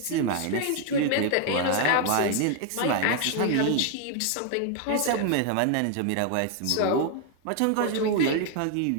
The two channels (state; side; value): different; both; correlation 0.00